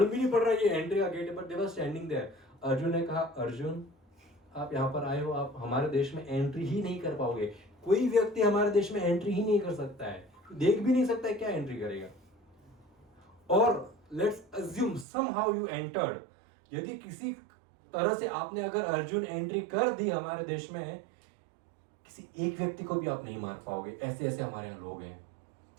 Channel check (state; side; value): drops out; left; at 15.1 s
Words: भी नहीं पड़ रहा ये एंट्री का गेट है, पर दे वर स्टैंडिंग देयर। अर्जुन ने कहा अर्जुन आप यहाँ पर आए हो, आप हमारे देश में एंट्री ही नहीं कर पाओगे। कोई व्यक्ति हमारे देश में एंट्री ही नहीं कर सकता है, देख भी नहीं सकता है, क्या एंट्री करेगा। और let's assume somehow you entered, यदि किसी तरह से आपने अगर अर्जुन एंट्री कर दी हमारे देश में, किसी एक व्यक्ति को भी आप नहीं मार पाओगे। ऐसे ऐसे हमारे यहाँ लोग हैं,